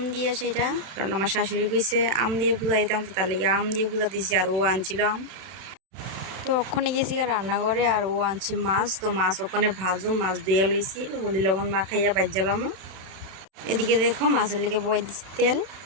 দিয়ে, সেটা কারণ আমার শাশুড়ি কইছে আম দিয়ে পূজা দিতাম, তো তার লেগে আম দিয়ে পূজা দিছি। আর ও আনছিল আম। তো ওখানে গেছি রান্নাঘরে, আর ও আনছে মাছ। তো মাছ ওখানে ভাজু, মাছ দিয়ে লইছি, হলদি লবণ মাখাইয়া বাজ্জালামও। এদিকে দেখো মাছের লেগে বয়ে দিচ্ছি তেল।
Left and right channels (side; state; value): left; late; 31 ms